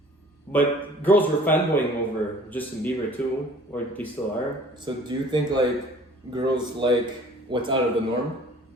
but girls were fanboying over Justin Bieber too, or they still are. So do you think like girls like what's out of the norm?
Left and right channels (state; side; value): normal; both; correlation 0.51